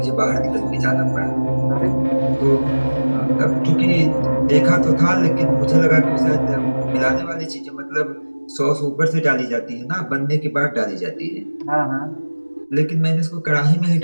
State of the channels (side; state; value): both; inverted; correlation -1.00